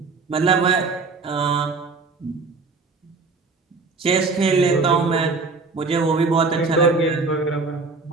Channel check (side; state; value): left; quieter; 4.1 dB